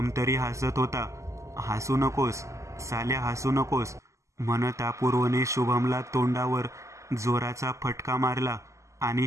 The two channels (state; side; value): late; left; 0.15 ms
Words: तरी हसत होता. हसू नकोस साल्या, हसू नकोस म्हणत अपूर्वने शुभमला तोंडावर जोराचा फटका मारला आणि